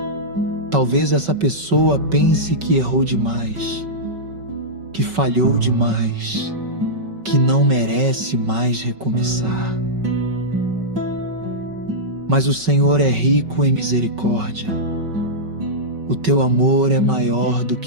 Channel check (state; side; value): late; left; 5.3 ms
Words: Talvez essa pessoa pense que errou demais, que falhou demais, que não merece mais recomeçar. Mas o Senhor é rico em misericórdia. O teu amor é maior do